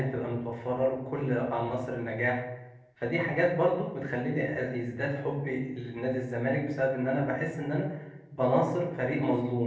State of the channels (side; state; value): both; identical; correlation 1.00